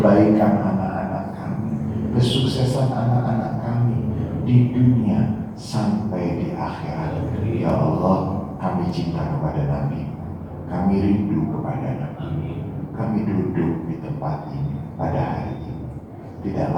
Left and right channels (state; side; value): identical; both; correlation 1.00